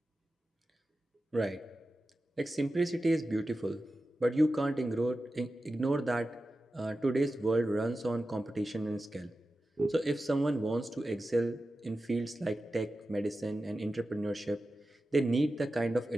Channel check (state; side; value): normal; both; correlation 0.93